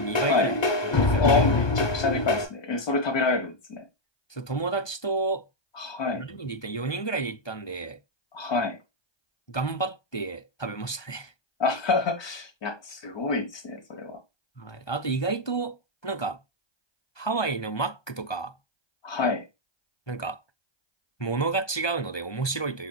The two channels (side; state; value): right; late; 1.2 ms